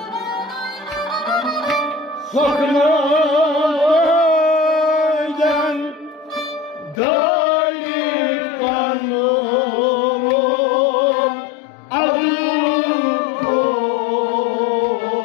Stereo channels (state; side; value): drops out; right; at 7.0 s